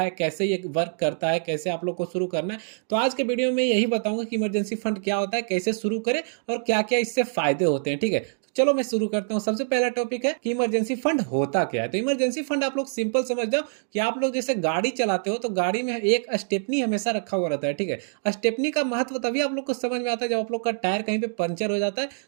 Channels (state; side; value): silent; left; digital silence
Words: कैसे ये वर्क करता है, कैसे आप लोग को शुरू करना है? तो आज के वीडियो में यही बताऊँगा कि इमरजेंसी फंड क्या होता है, कैसे शुरू करें और क्या-क्या इससे फ़ायदे होते हैं, ठीक है? तो चलो मैं शुरू करता हूँ। सबसे पहला टॉपिक है कि इमरजेंसी फंड होता क्या है? तो इमरजेंसी फंड आप लोग सिंपल समझ जाओ कि आप लोग जैसे गाड़ी चलाते हो, तो गाड़ी में एक स्टेपनी हमेशा रखा हुआ रहता है, ठीक है? स्टेपनी का महत्व तभी आप लोग को समझ में आता है जब आप लोग का टायर कहीं पे पंचर हो जाता है,